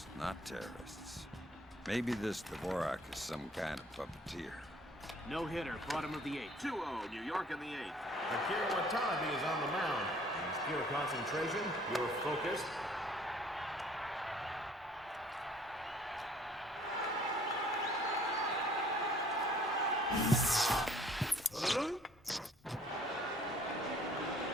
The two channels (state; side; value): normal; both; correlation 0.57